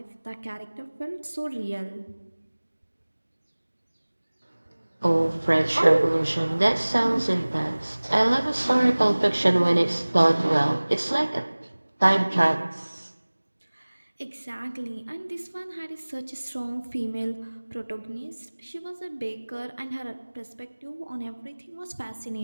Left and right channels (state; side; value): inverted; both; correlation -1.00